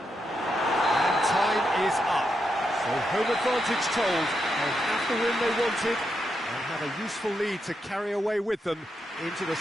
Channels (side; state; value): both; normal; correlation 0.83